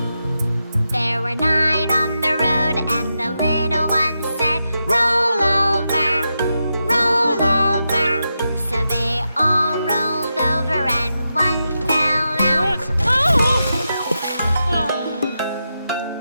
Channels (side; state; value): both; inverted; correlation -0.87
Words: There were 9 on the road, and the little one said, roll over, roll over. So they all rolled over, and one fell out.